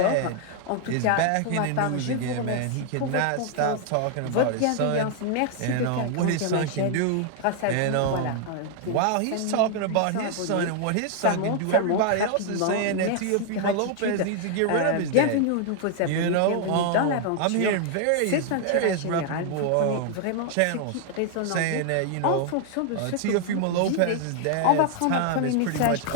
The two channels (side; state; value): both; different; correlation 0.00